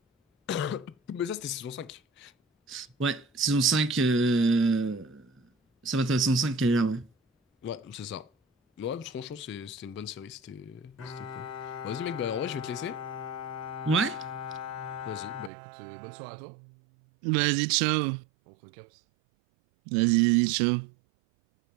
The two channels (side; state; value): left; drops out; at 15.5 s